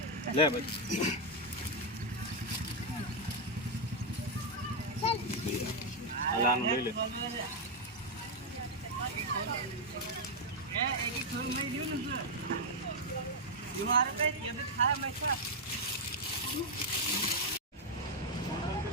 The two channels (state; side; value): normal; both; correlation 0.00